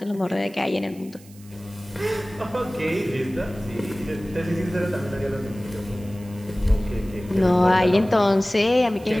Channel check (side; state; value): right; noise; hiss, 24 dB below the sound